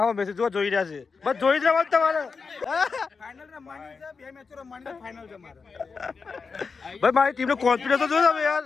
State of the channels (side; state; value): right; quieter; 5.0 dB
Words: મેચ જો જોઈ રહ્યા છે, બસ જોઈ જ રહેવાનું તમારે. ભાઈ મારી ટીમનો કોન્ફિડન્સ તો જો તમે યાર.